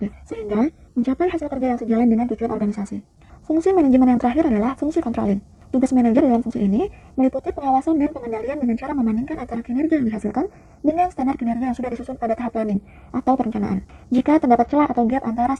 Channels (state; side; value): identical; both; correlation 1.00